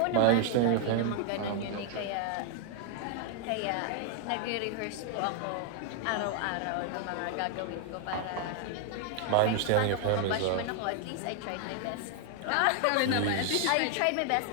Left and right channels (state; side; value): different; both; correlation 0.00